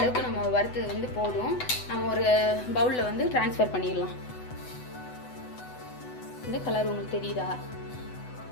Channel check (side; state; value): right; late; 8.0 ms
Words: நம்ம வறுத்தது போதும். நம்ம ஒரு பவுலில் ட்ரான்ஸ்ஃபர் பண்ணிடலாம். இந்த கலர் உங்களுக்கு தெரியுதா?